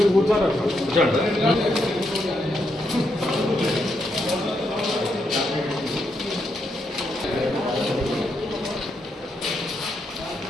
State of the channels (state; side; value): normal; both; correlation 0.80